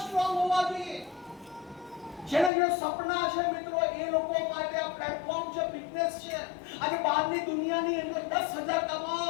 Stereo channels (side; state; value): right; drops out; at 2.5 s